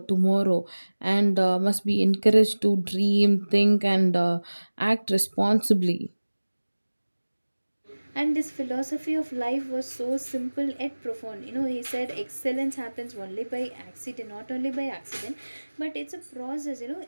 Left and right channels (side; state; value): both; inverted; correlation -1.00